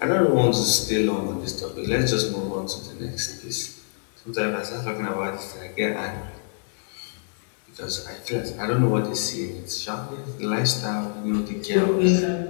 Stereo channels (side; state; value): right; silent; digital silence